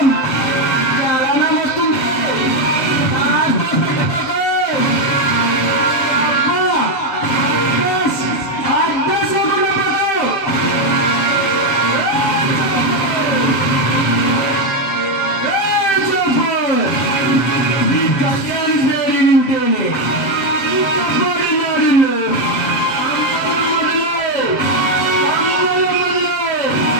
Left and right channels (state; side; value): late; right; 7.7 ms